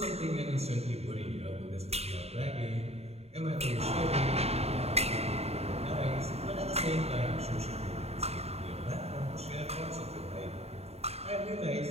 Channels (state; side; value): late; left; 0.30 ms